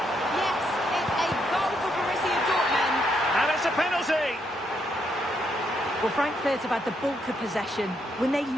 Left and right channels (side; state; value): both; normal; correlation 0.76